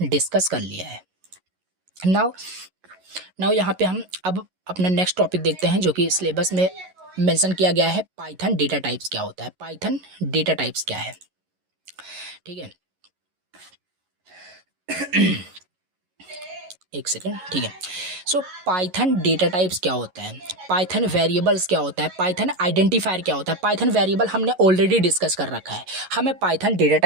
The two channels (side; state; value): left; late; 11 ms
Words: डिस्कस कर लिया है। नाउ यहाँ पे हम अब अपना नेक्स्ट टॉपिक देखते हैं, जो कि सिलेबस में मेंशन किया गया है। पाइथन डेटा टाइप्स क्या होता है, पाइथन डेटा टाइप्स क्या है, ठीक है। एक सेकेंड, ठीक है। सो पाइथन डेटा टाइप्स क्या होता है, पाइथन वेरिएबल्स क्या होता है, पाइथन आइडेंटिफायर क्या होता है। पाइथन वेरिएबल हमने ऑलरेडी डिस्कस कर रखा है, हमें पाइथन डेटा